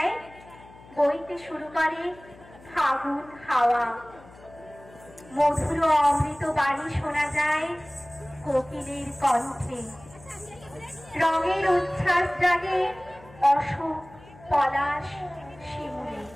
বইতে শুরু করে ফাগুন হাওয়া। মধুর অমৃত বাণী শোনা যায় কোকিলের কণ্ঠে। রঙের উচ্ছ্বাস জাগে অশোক, পলাশ, শিমুলে।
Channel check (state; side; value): noise; left; hum, 22 dB below the sound